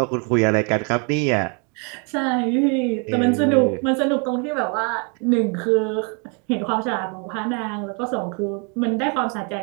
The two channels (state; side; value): quieter; left; 35.3 dB